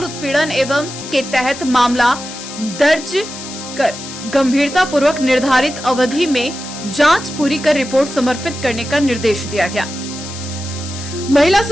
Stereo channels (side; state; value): left; noise; hiss, 12 dB below the sound